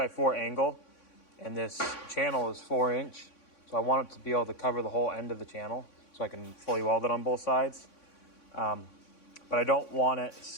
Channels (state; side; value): late; right; 3.6 ms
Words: angle, and this channel is 4-inch, so I want it to be able to cover the whole end of the channel so I can fully weld it on both sides. But I don't want it